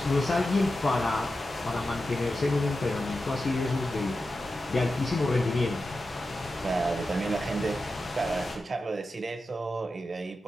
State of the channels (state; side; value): normal; both; correlation 0.91